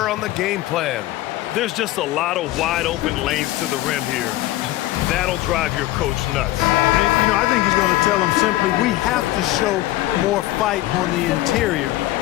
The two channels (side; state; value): right; quieter; 16.2 dB